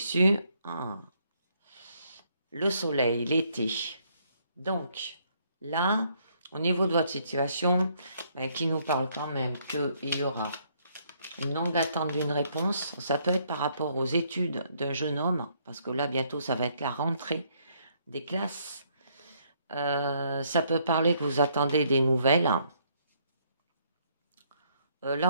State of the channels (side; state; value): both; inverted; correlation -0.69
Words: le soleil, l'été. Donc, là, au niveau de votre situation, qui nous parle quand même qu'il y aura une longue attente d'une réponse. Ça peut être par rapport aux études d'un jeune homme, parce que là, bientôt, ça va être la rentrée des classes. Ça peut parler que vous attendez des nouvelles.